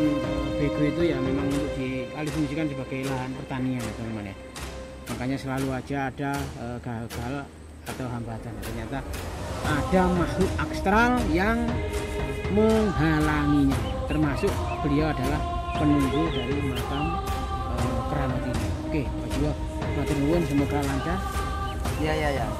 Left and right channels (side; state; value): both; identical; correlation 1.00